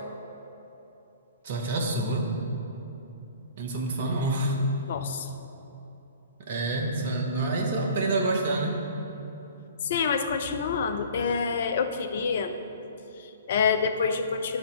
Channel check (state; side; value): inverted; both; correlation -0.47